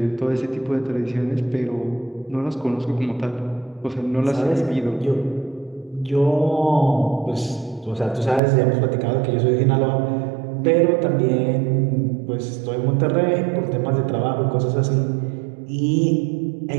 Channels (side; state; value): left; drops out; at 8.4 s